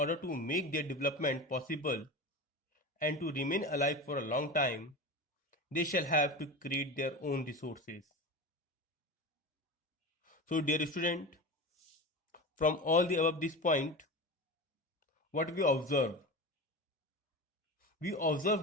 to make their development possible and to remain alive for a long time, they shall have to create their own resources. So, dear student, from all the above this point, what we observe? We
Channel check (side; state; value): both; normal; correlation 0.27